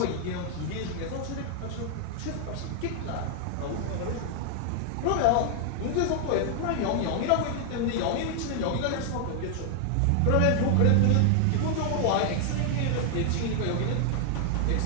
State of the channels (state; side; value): different; both; correlation 0.00